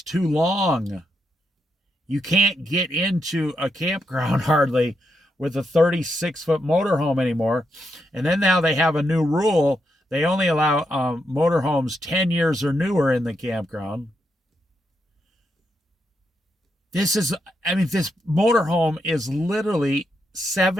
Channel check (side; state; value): both; normal; correlation 0.81